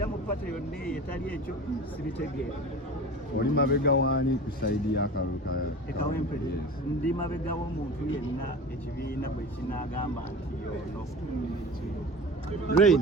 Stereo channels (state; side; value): normal; both; correlation 0.35